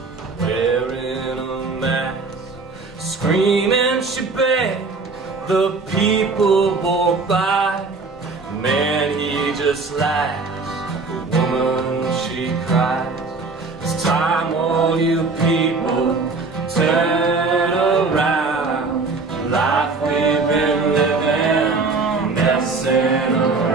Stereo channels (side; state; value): left; quieter; 4.0 dB